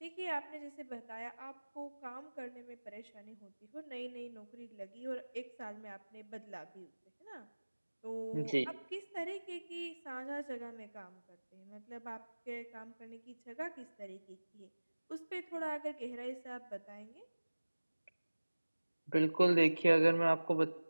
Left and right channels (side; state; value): both; inverted; correlation -1.00